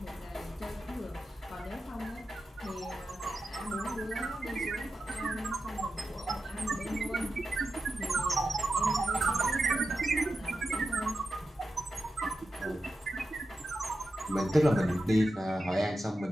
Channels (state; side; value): normal; both; correlation 0.90